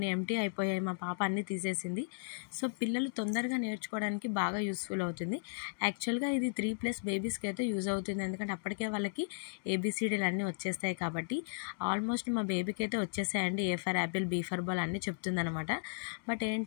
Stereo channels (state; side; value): silent; right; digital silence